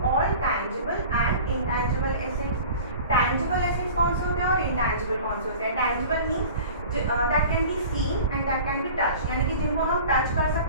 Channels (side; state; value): both; inverted; correlation -0.41